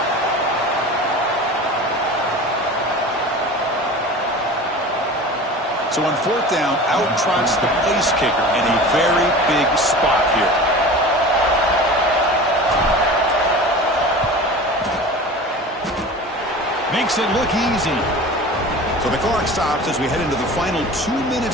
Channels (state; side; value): normal; both; correlation 0.36